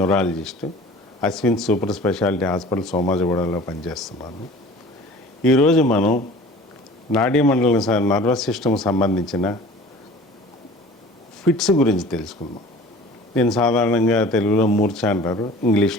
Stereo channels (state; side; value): normal; both; correlation 0.44